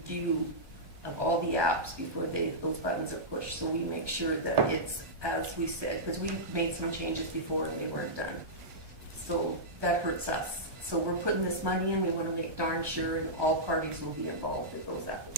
of all the apps before those buttons are pushed, so we make sure that it's as we said, because we made some changes before and they weren't done. So that hurts us. So we're putting this money in, we want to make darn sure and all parties will be involved in those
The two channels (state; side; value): late; left; 1.2 ms